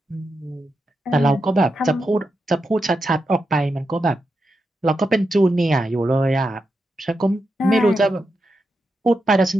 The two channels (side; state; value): both; normal; correlation 0.86